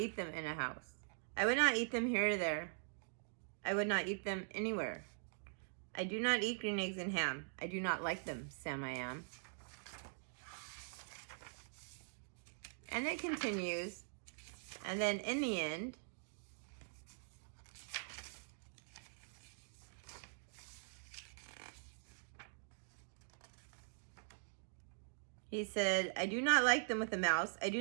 them in a house. I would not eat them here or there. I would not eat them anywhere. I do not eat green eggs and ham. I do not like them, Sam I am. And it continues. And then in the end, he said, I do not like them with a mouse. I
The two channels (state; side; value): silent; left; digital silence